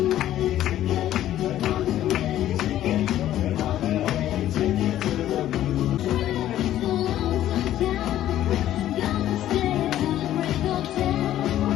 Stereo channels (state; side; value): quieter; right; 12.6 dB